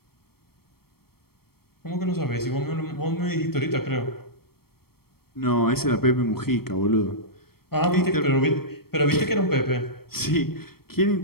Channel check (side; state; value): right; late; 0.95 ms